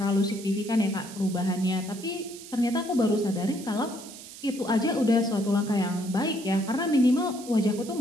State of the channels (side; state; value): right; noise; hiss, 15 dB below the sound